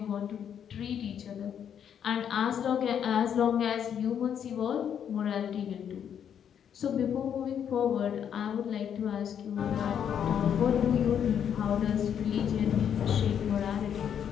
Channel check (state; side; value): quieter; right; 8.6 dB